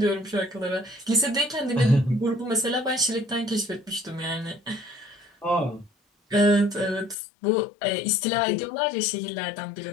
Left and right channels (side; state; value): right; drops out; at 7.2 s